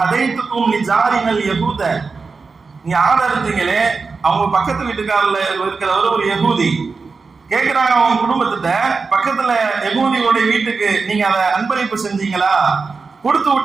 லிஜாரினல் யஹூத, நீங்க ஆடு இருந்தீங்களே, அவங்க பக்கத்து வீட்டுக்காரர்ல இருக்கிறவர் ஒரு யஹூதி. கேட்கிறாங்க அவங்க குடும்பத்திட்ட, பக்கத்துல யஹூதியோட வீட்டுக்கு நீங்க அதை அன்பளிப்பு செஞ்சீங்களா, கொடுத்து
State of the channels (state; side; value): quieter; left; 4.5 dB